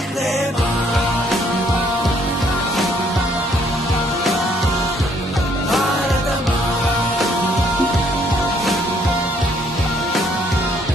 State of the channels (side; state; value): both; normal; correlation 0.66